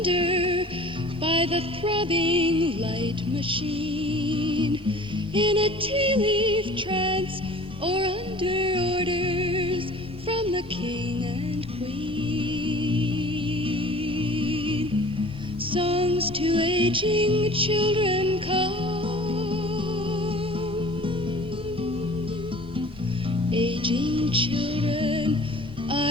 by the throbbing light machine, in a tea-leaf trance or under orders from the king and queen. Songs to aging children come, aging children, I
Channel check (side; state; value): both; normal; correlation 0.45